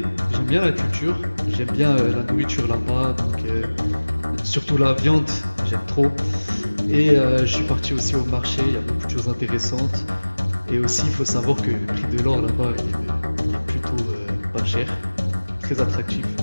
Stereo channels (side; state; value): both; inverted; correlation -1.00